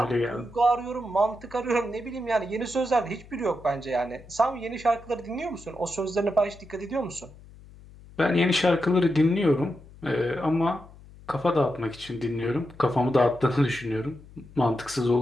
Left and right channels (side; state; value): left; noise; hum, 21 dB below the sound